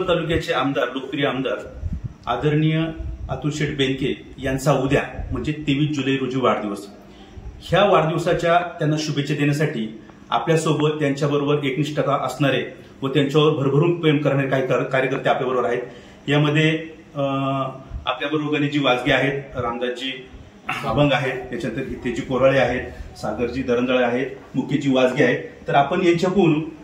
तालुक्याचे आमदार, लोकप्रिय आमदार आदरणीय अतुल शेठ बेनके यांचा उद्या म्हणजे 23 जुलै रोजी वाढदिवस. ह्या वाढदिवसाच्या त्यांना शुभेच्छा देण्यासाठी आपल्यासोबत त्यांच्याबरोबर एकनिष्ठता असणारे व त्यांच्यावर भरभरून प्रेम करणारे काही कार्यकर्ते आपल्याबरोबर आहेत. यामध्ये आपल्याबरोबर गणेशजी वाजगे आहेत, रामदासजी अभंग आहेत, त्याच्यानंतर हितेजी कोराळे आहेत, सागरजी दरंजळे आहेत, मुकेशजी वाजगे आहेत. तर आपण यांच्याकडून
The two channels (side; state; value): both; identical; correlation 1.00